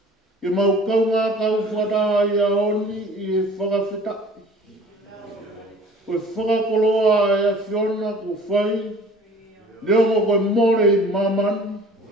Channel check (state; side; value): normal; both; correlation 0.48